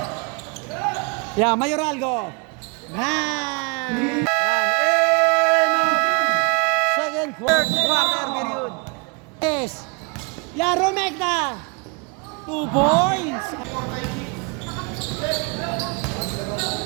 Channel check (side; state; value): left; quieter; 32.7 dB